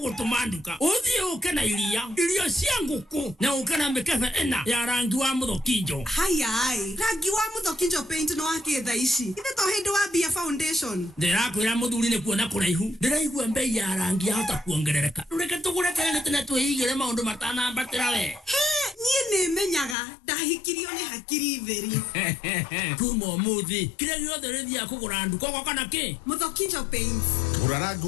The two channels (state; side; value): drops out; right; at 20.0 s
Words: nduka uthie uke na irio cia nguku na uke na mbeca ena ya rangi wa muthokinjo. Haya rangi wa muthokinjo paint no akitha ici inde to hindu wa Bia Foundation. Ndirakwira muthuri ni kuona kuraihu ndiraigua mbei ya rangi hata kuongerereka reke tugure tene twihigire maundu matanambatira we nie ni menyaga ndahikirio ni hakiri theri kumo muthi kire giothe rithia kugura nduka kwa kana ki muthokinjo paint gura rangi